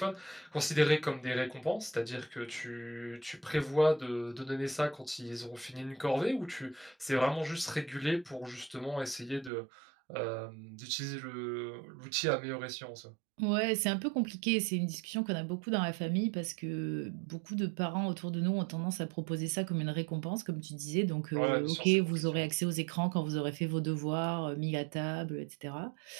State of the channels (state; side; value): drops out; left; at 9.5 s